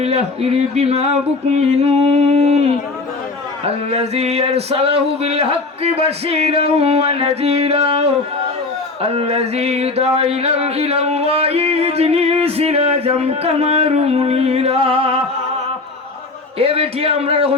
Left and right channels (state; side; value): quieter; right; 3.6 dB